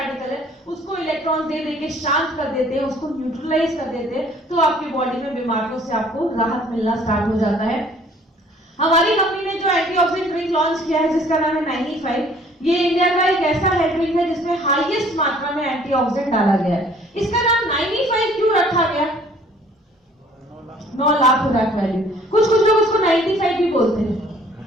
है उसको इलेक्ट्रॉन दे देके शांत कर देते हैं, उसको न्यूट्रलाइज कर देते हैं, तो आपकी बॉडी में बीमारियों से आपको राहत मिलना स्टार्ट हो जाता है। हमारी कंपनी ने जो एंटीऑक्सीडेंट ड्रिंक लॉन्च किया है जिसका नाम है 95, ये इंडिया का एक ऐसा हेल्थ ड्रिंक है जिसमें हाईएस्ट मात्रा में एंटीऑक्सीडेंट डाला गया है। इसका नाम 95 क्यों रखा गया? 9 लाख खुराक वैल्यू। कुछ लोग उसको 95 भी बोलते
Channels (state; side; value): normal; both; correlation 0.56